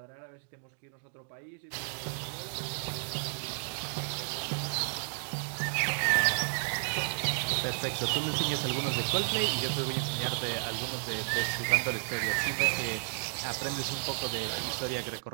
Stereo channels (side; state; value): left; silent; digital silence